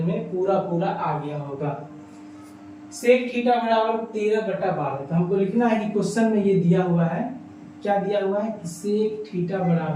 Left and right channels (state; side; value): identical; both; correlation 1.00